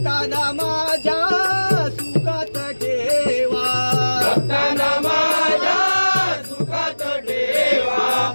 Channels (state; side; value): inverted; both; correlation -1.00